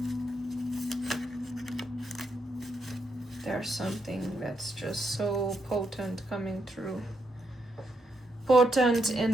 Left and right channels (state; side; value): normal; both; correlation 0.80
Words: There's something that's just so potent coming through. Potent